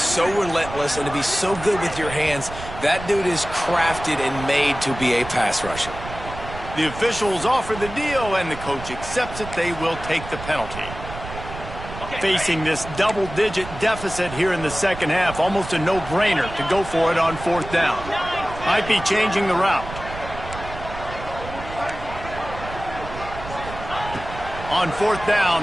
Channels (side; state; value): right; noise; rumble, 11 dB below the sound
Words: relentless and to be so good with your hands, that dude is crafted and made to be a pass rusher. The officials offer the deal, and the coach accepts it. They will take the penalty. Facing this double-digit deficit here in the second half, almost a no-brainer to go for it on fourth down. Might be changing the route. On fourth